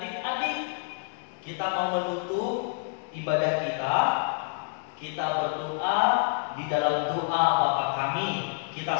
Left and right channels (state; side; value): silent; right; digital silence